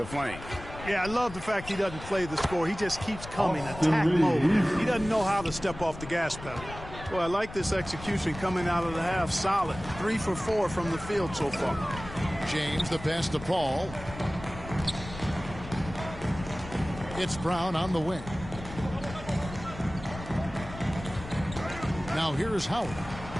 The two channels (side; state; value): left; noise; rumble, 13 dB below the sound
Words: flame. Yeah, I love the fact he doesn't play the score. He just keeps coming, attack mode. He doesn't know how to step off the gas pedal. Well, I like this execution coming out of the half. Solid. 3 for 4 from the field so far. James, the pass to Paul. It's Brown on the wing. Now here is Howard.